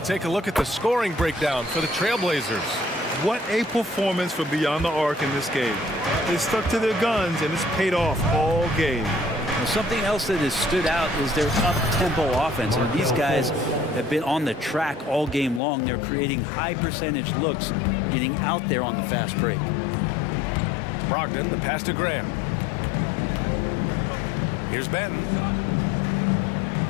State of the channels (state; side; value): drops out; right; at 15.6 s